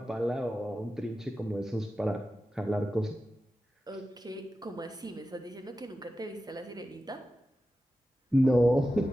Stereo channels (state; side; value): normal; both; correlation 0.93